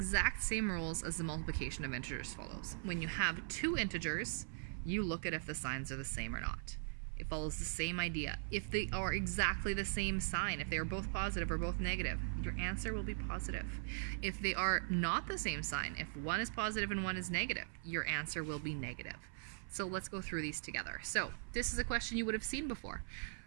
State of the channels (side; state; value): left; silent; 51 dB below the other